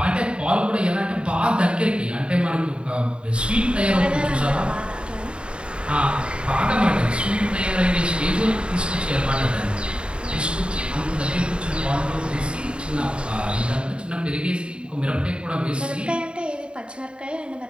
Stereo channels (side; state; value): left; late; 0.053 ms